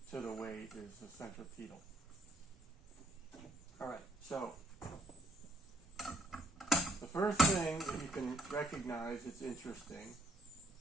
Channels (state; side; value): normal; both; correlation 0.66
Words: to the weight is the centripetal. All right, so the first thing that you can recognize that's interesting,